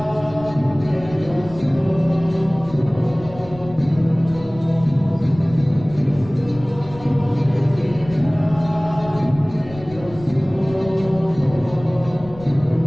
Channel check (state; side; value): noise; left; rumble, 17 dB below the sound